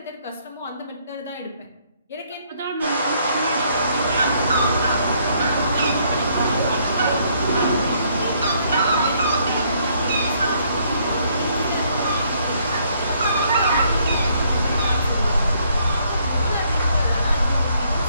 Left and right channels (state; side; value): inverted; both; correlation -0.68